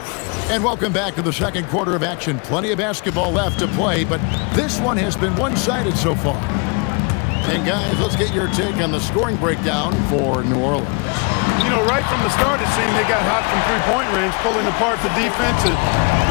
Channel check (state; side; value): quieter; right; 33.4 dB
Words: And welcome back to the second quarter of action. Plenty of basketball left to play, but this one has been one-sided so far. And guys, let's get your take on the scoring breakdown for New Orleans. You know, right from the start, it seemed they got hot from three-point range, pulling apart the defense and